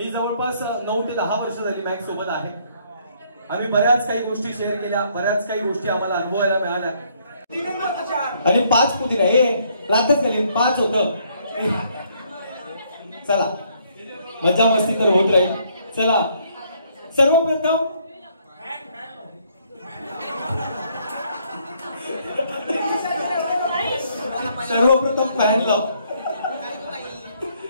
जवळपास 9 ते 10 वर्ष झाली मॅक्स सोबत आहे. आम्ही बऱ्याच काही गोष्टी शेअर केल्या. बऱ्याच काही गोष्टी आम्हाला अनुभवायला मिळाल्या. आणि 5 कुठे नाही रातच गेली 5 होतं. चला मजा मस्ती तर होत राहील. चला सर्वप्रथम सर्वप्रथम फॅन लाव.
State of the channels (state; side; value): inverted; both; correlation -0.67